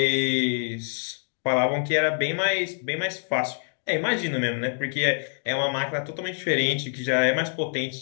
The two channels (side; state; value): right; silent; 61 dB below the other